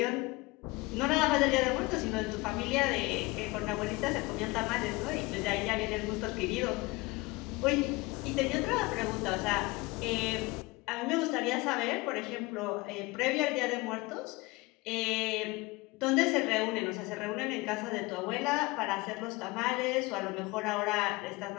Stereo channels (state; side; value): quieter; right; 23.4 dB